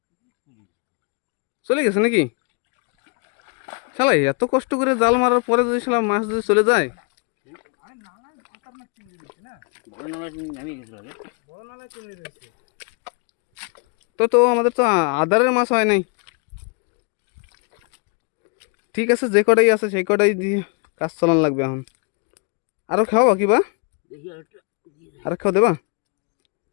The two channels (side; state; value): right; quieter; 34.7 dB